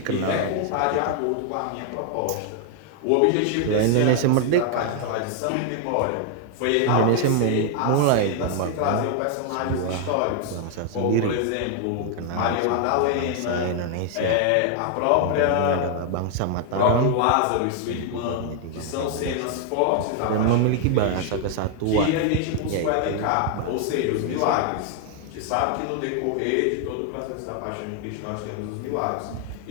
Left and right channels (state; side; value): different; both; correlation 0.00